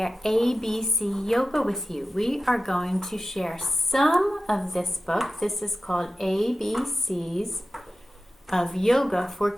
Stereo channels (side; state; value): both; normal; correlation 0.93